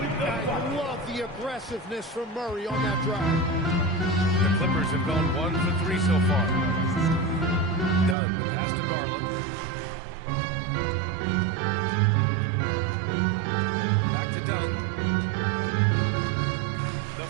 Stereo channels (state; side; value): drops out; left; at 8.2 s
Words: love the aggressiveness from Murray on that drive. The Clippers have gone 1 for 3 so far. Dunn, pass to Garland. Back to Dunn. The